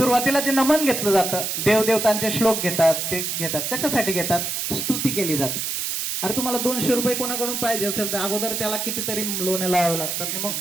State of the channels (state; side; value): noise; right; hiss, 2 dB below the sound